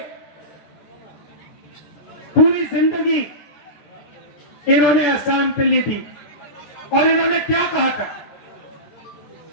पूरी जिंदगी इन्होंने असम के लिए दी। और इन्होंने क्या कहा था?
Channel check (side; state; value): right; late; 14 ms